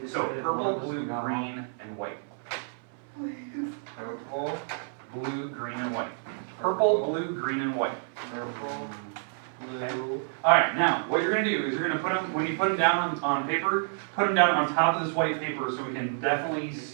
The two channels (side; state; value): left; silent; 57 dB below the other